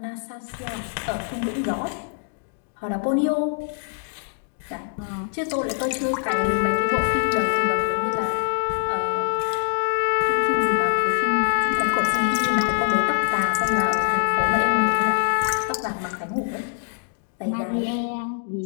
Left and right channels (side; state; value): right; silent; digital silence